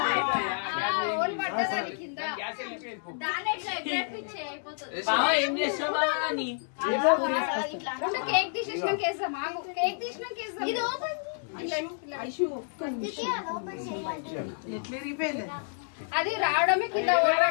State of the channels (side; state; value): right; silent; digital silence